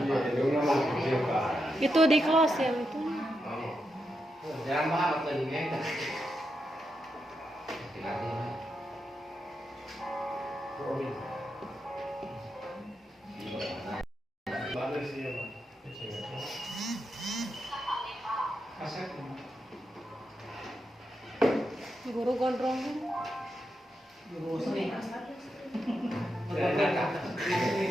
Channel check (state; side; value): normal; both; correlation 0.85